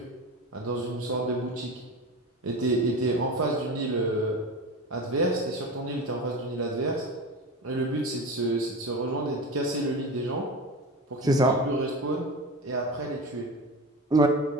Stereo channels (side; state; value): both; normal; correlation 0.28